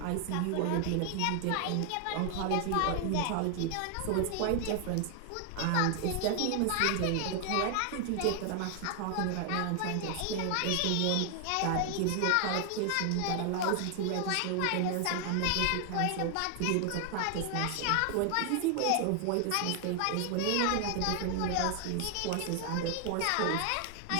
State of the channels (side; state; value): both; different; correlation 0.00